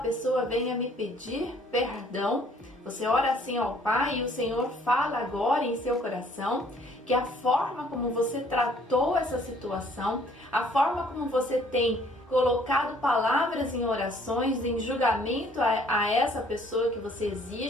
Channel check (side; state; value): both; normal; correlation 0.60